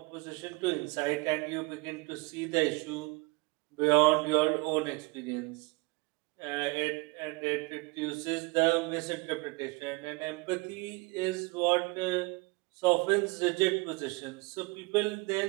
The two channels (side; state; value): left; quieter; 26.4 dB